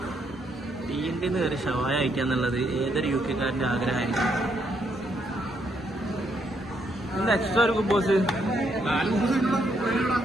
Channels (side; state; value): both; normal; correlation 0.74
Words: തീൻ്റെ കയറി ഷവായ അയക്കാന്നുള്ളത് ഏതൊരു യു കെക്കാരന്റെ ആഗ്രഹമായിരിക്കും. എന്താ എക്സ്ട്രാ ഒരു ബോസ്